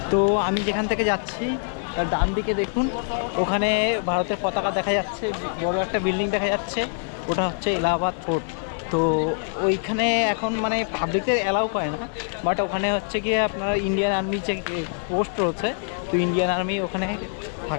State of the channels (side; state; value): right; silent; 56 dB below the other